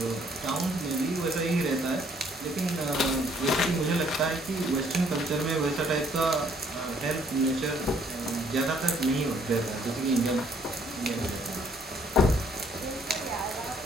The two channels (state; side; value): normal; both; correlation 0.64